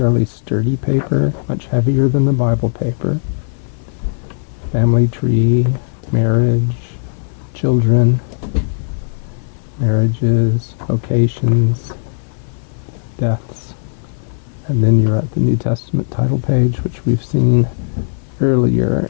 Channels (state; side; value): silent; right; 55 dB below the other